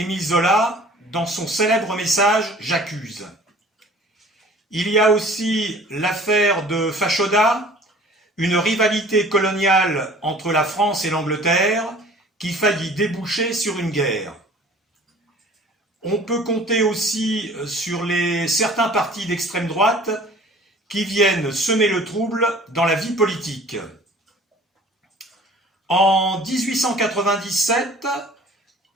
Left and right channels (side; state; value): both; normal; correlation 0.49